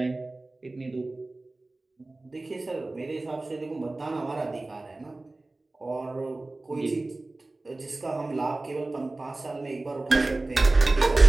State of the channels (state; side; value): quieter; left; 3.0 dB